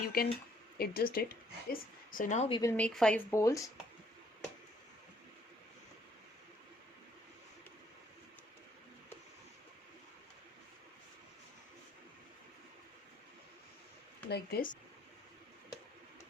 can adjust it. So now we will make 5 bowls. Like this.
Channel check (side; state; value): both; normal; correlation 0.66